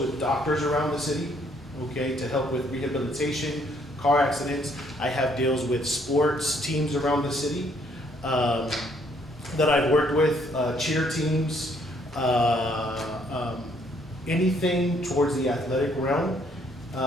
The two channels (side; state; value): both; normal; correlation 0.67